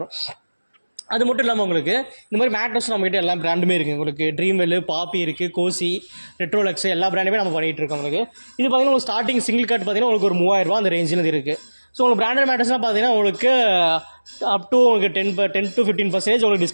அது மட்டும் இல்லாமல் உங்களுக்கு இந்த மாதிரி மேட்ரஸ் நம்மகிட்ட எல்லா பிராண்டுமே இருக்குது உங்களுக்கு. ட்ரீம்வெல், பாப்பி இருக்குது, கோசி, ரெட்ரோலக்ஸ் எல்லா பிராண்டுமே நம்ம பண்ணிகிட்டு இருக்கோம் உங்களுக்கு. இது பார்த்தீங்கன்னா உங்களுக்கு ஸ்டார்டிங் சிங்கிள் கார்டு பார்த்தீங்கன்னா உங்களுக்கு ஒரு 3000 அந்த ரேஞ்சில் இருக்குது. ஸோ உங்களுக்கு பிராண்டட் மேட்ரஸ்லாம் பார்த்தீங்கன்னா உங்களுக்கு அப் டு உங்களுக்கு 10 to 15% உங்களுக்கு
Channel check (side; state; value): both; inverted; correlation -1.00